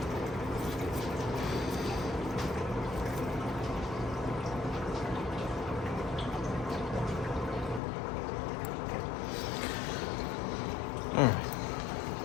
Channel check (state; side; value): drops out; right; at 7.8 s